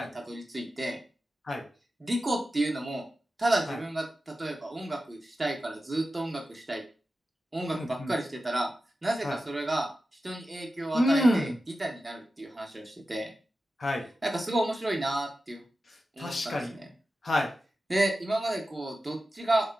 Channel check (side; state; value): both; normal; correlation 0.93